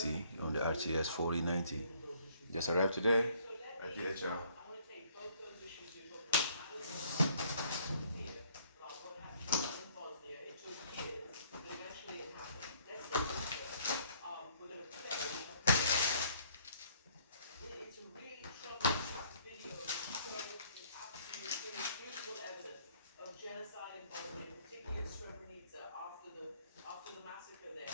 on the RTS 4090. Just arrived today at DHL.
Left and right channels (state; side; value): inverted; both; correlation -0.62